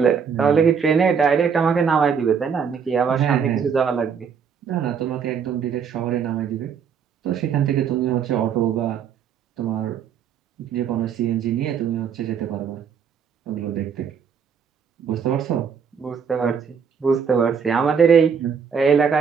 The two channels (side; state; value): left; quieter; 6.8 dB